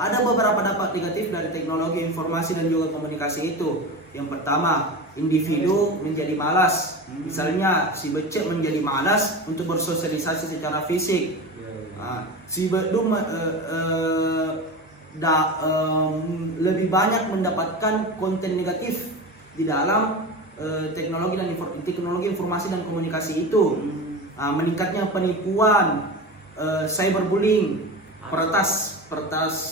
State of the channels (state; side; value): normal; both; correlation 0.27